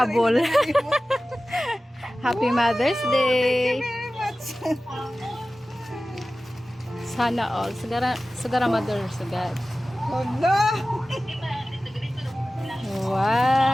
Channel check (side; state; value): both; normal; correlation 0.96